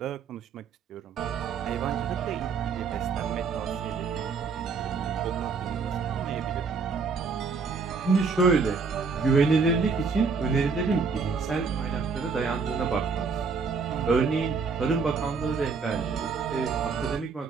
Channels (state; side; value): quieter; left; 5.0 dB